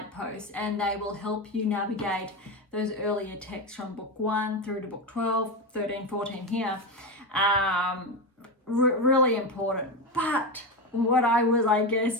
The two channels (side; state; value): both; normal; correlation 0.15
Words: and they will help you navigate those earlier texts from book 1 through to book 12, 13, 14 here. Really important. But what I was,